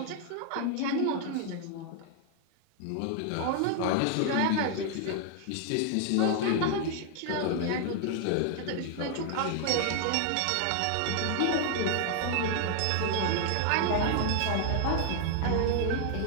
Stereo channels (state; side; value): different; both; correlation 0.00